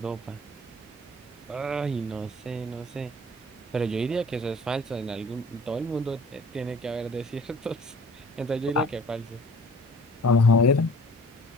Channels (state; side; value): normal; both; correlation 0.49